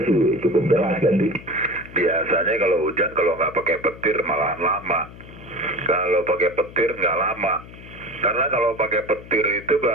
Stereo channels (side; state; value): left; noise; hum, 17 dB below the sound